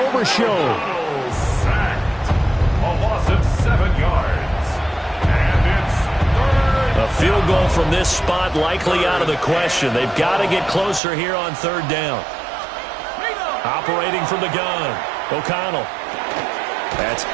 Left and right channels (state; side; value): drops out; left; at 11.0 s